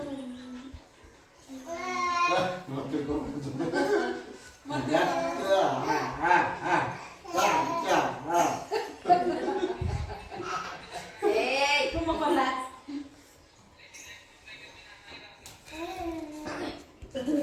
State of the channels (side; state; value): both; identical; correlation 1.00